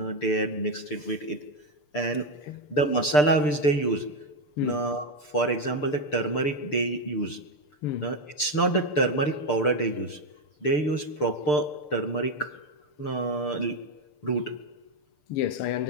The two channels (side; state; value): right; late; 6.7 ms